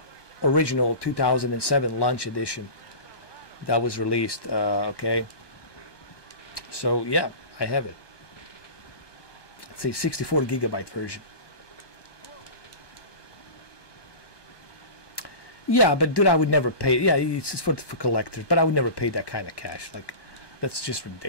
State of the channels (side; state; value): right; late; 1.2 ms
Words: original 2007 launch edition that was released. Okay. So yeah, I have it. It's a 64 gigabyte version. Yeah, but dude, I would never pay. Yeah, it's just for collectors, but I would never pay that kind of cash. Like, that's just